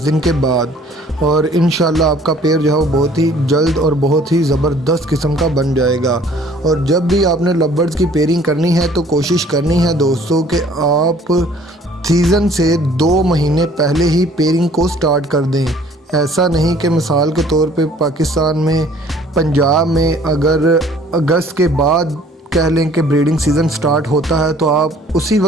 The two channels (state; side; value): normal; both; correlation 0.55